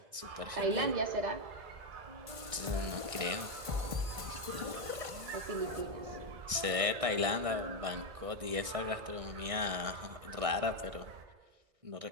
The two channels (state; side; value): late; left; 1.6 ms